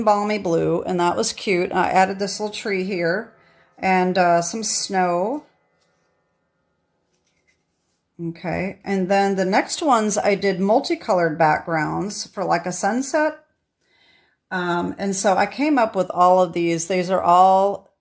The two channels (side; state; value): both; identical; correlation 1.00